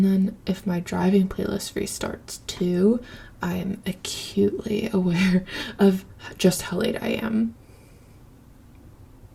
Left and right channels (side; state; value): both; identical; correlation 1.00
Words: then if my driving playlist restarts too, I am acutely aware of just how late I am.